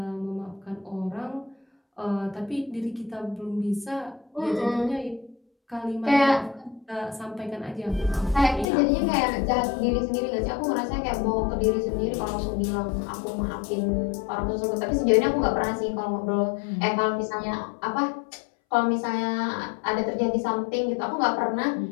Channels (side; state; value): right; drops out; at 8.7 s